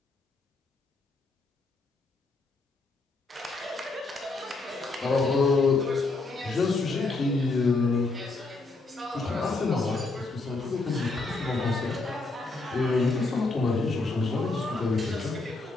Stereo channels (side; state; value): right; quieter; 3.5 dB